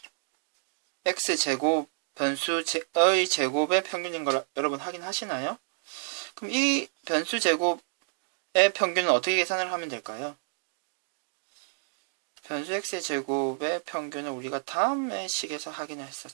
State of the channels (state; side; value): silent; left; digital silence